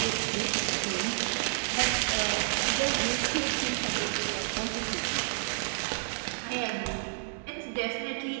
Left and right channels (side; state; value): left; silent; 57 dB below the other